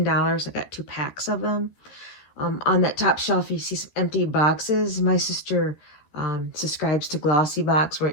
I got 2 packs of them. On that top shelf, you see some empty boxes. My sister subscribes to Glossy Box,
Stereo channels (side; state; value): right; late; 13 ms